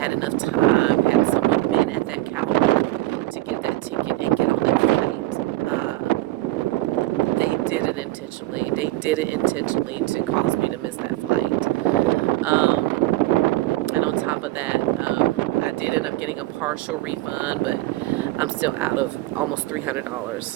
enough time, had someone been at that counter to get that ticket and get on that flight. They did it intentionally. They did it intentionally to cause me to miss that flight. And on top of that, I did end up getting a partial refund, but I'm still out of almost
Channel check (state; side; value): quieter; left; 17.7 dB